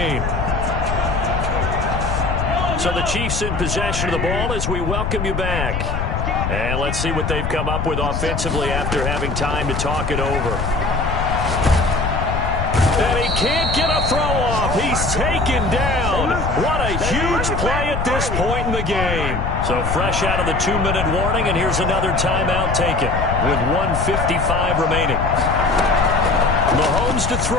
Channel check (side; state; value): left; noise; rumble, 3 dB below the sound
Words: So the Chiefs in possession of the ball as we welcome you back. And let's see what they've come up with offensively after having time to talk it over. And he can't get a throw off. He's taken down. What a huge play at this point in the game. So fresh out of the 2-minute warning, and here's another timeout taken with 1:55 remaining. Mahomes to